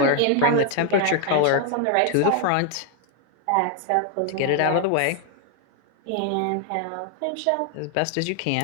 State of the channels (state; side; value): different; both; correlation 0.00